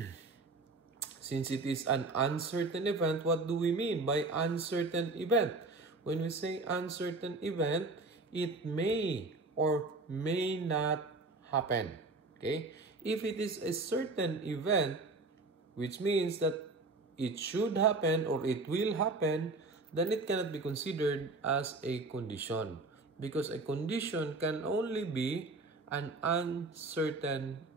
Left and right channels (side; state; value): left; quieter; 3.4 dB